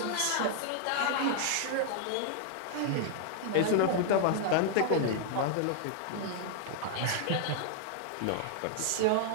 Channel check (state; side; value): different; both; correlation -0.01